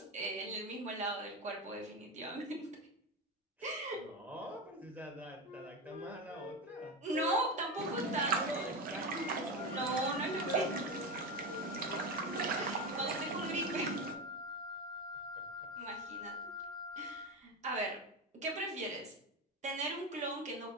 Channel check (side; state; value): both; normal; correlation 0.18